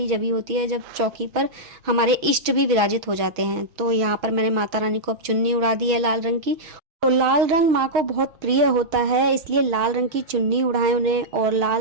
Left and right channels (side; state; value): left; late; 6.1 ms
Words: जब ही होती है जब चौकी पर हमारे इष्ट भी विराजित हो जाते हैं। तो यहाँ पर मैंने माता रानी को अब चुन्नी उड़ा दी है लाल रंग की। तो लाल रंग माँ को बहुत प्रिय होता है, इसलिए लाल रंग की चुन्नी उड़ाएं उन्हें और